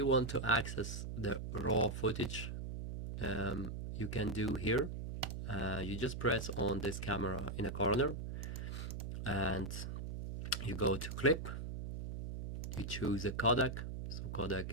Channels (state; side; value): noise; right; hum, 5 dB below the sound